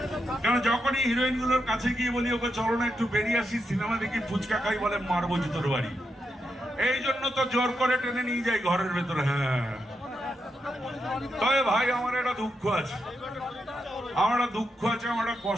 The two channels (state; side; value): normal; both; correlation 0.84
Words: কেন? যখনই হিরোইন গুলোর কাছে গিয়ে বলি ওকে চলো না একটু বেরিয়ে আসি, সিনেমা দেখি, ফুচকা খাই, বলে মারবো জুতোর বাড়ি। এই জন্য তো জোর করে টেনে নিয়ে যাই ঘরের ভেতরে। হ্যাঁ, তবে ভাই আমার একটা দুঃখ আছে, আমার একটা দুঃখ আছে, আমার একটা